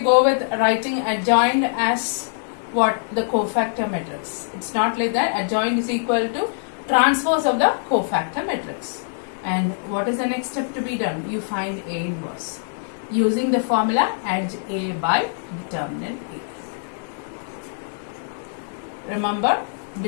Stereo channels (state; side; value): silent; right; digital silence